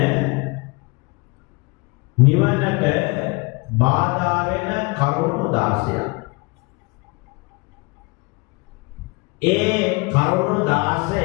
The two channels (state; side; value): quieter; right; 28.0 dB